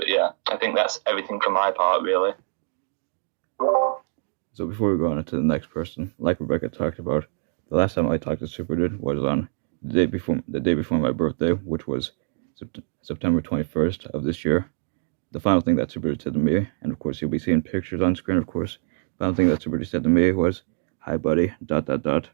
yeah, I think that's everything from my part, really. So before we go on to the next person, like Rebecca talked about, the last time I talked to SuperDude was on the day before my birthday, which was September 21st of this year. The final thing that SuperDude said to me, and of course you'll be seeing pictures on screen, of course, the final thing that SuperDude said to me was, "Hi buddy,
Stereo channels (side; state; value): left; silent; digital silence